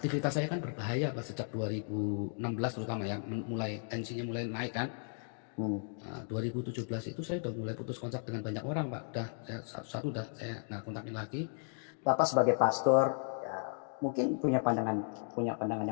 saya kan berbahaya Pak sejak 2016 terutama ya, mulai tensinya mulai naik kan. Nah, 2017 itu saya udah mulai putus kontak dengan banyak orang Pak. Udah saya satu-satu udah saya nggak kontakin lagi. Bapak sebagai pastor ya, mungkin punya pandangan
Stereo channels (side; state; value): right; silent; 54 dB below the other